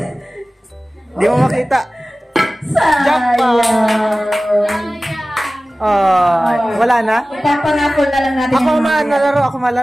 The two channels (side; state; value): both; normal; correlation 0.97